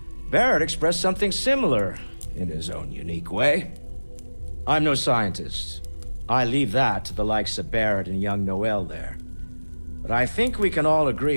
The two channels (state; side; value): inverted; both; correlation -1.00